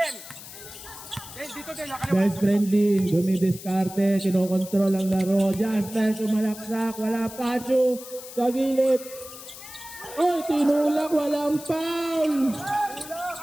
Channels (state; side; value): noise; left; hiss, 14 dB below the sound